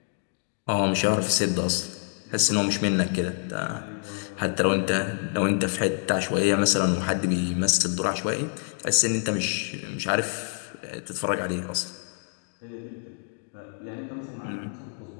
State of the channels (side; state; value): right; silent; 60 dB below the other